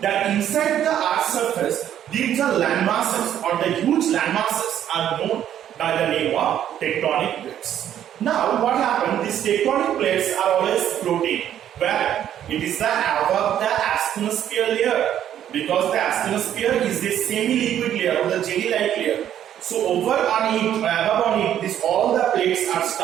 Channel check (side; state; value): left; quieter; 10.6 dB